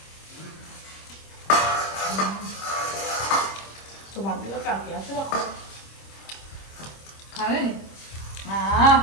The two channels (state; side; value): late; right; 26 ms